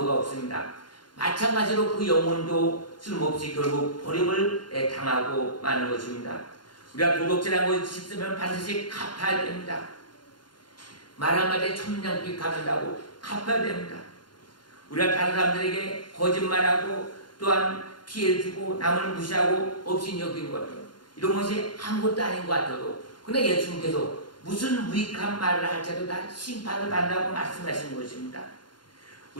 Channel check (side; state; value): right; late; 0.71 ms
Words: 없습니다. 마찬가지로 그 영혼도 쓸모없이 결국 버림을 당하고 마는 것입니다. 우리가 도둑질한 것이 있으면 반드시 갚아야 됩니다. 말 한마디에 천냥빚 갚는다고 갚아야 됩니다. 우리가 다른 사람들에게 거짓말하고 또한 피해를 주고 남을 무시하고 없인 여긴 것들 이런 것이 아무것도 아닌 것 같아도 그러나 예수님께서 무슨 무익한 말을 할지라도 다 심판을 받는다고 말씀하신 것입니다.